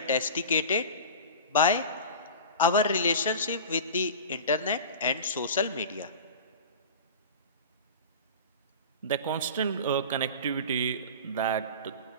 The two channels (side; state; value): both; inverted; correlation -0.33